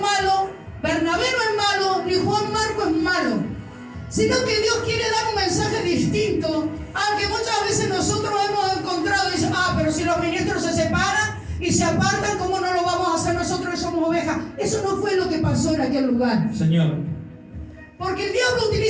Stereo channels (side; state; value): both; identical; correlation 1.00